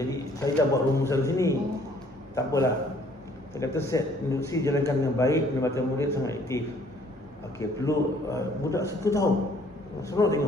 saya dah buat rumusan sini. Tak apalah. Saya kata set induksi jalankan dengan baik, pendapatan murid sangat aktif. Okey, perlu budak suka tahu. Seronok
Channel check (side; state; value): both; normal; correlation 0.60